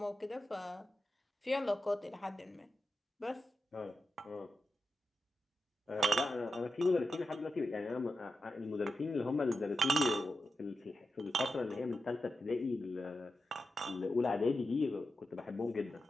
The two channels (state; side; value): normal; both; correlation 0.90